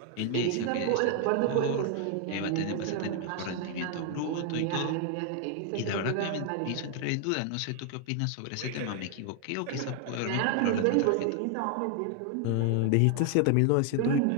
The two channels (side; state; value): both; different; correlation 0.00